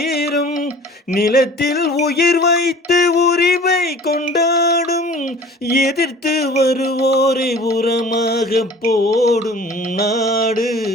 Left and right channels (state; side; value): normal; both; correlation 0.45